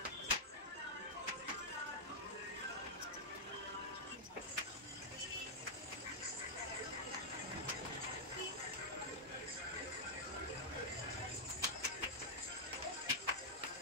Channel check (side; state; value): both; normal; correlation -0.07